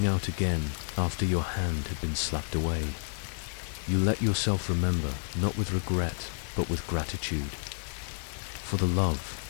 out again after your hand had been slapped away. You let yourself remember, not with regret, but with gratitude. For the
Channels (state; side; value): silent; right; digital silence